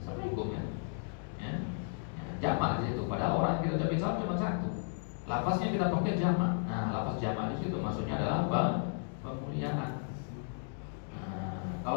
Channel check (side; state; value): right; silent; digital silence